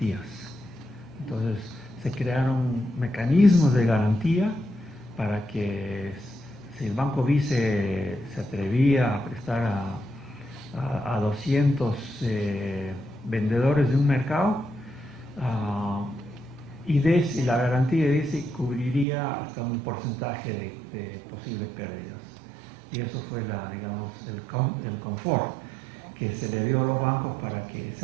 Entonces se crearon mecanismos de garantía para que si el Banco Vice se atrevía a prestar a 200 vendedores de un mercado, y la garantía de IDESI cubriría hasta un porcentaje de posibles pérdidas. Y eso fue digamos, el confort que se le dio a los bancos para que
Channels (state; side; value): drops out; left; at 19.1 s